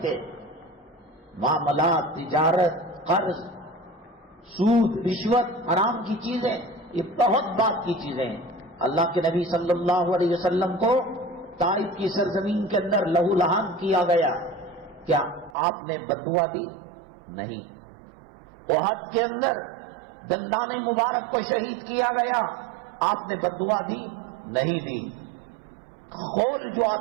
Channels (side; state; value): left; drops out; at 15.6 s